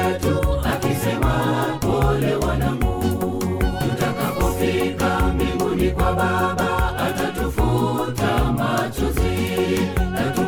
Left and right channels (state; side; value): identical; both; correlation 1.00